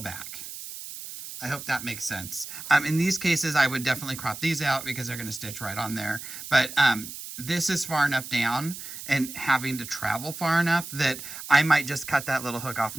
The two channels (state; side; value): noise; right; hiss, 10 dB below the sound